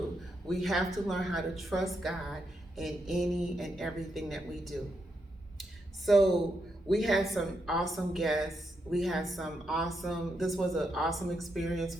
We have to learn how to trust God in any and everything that we do. So we had some awesome guests. This was an awesome experience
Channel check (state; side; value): normal; both; correlation 0.82